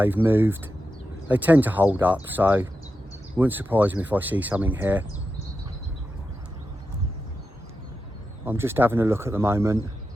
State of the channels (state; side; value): normal; both; correlation 0.89